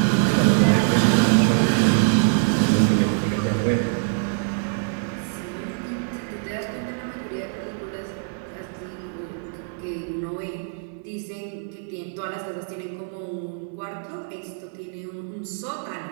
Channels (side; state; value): left; silent; digital silence